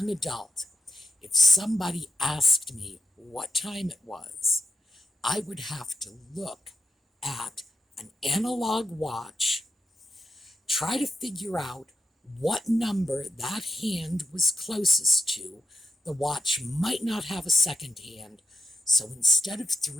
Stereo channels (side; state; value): both; normal; correlation 0.86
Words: adult, if somebody asked me what time it was, I would have to look at an analog watch, try to figure out what number that hand was closest to. The watch might not have a second hand, so instead of